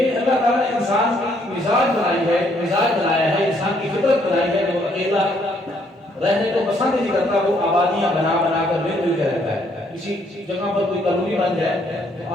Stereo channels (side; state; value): both; normal; correlation 0.69